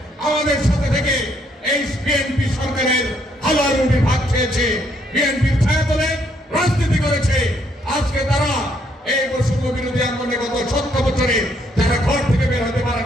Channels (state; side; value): normal; both; correlation 0.71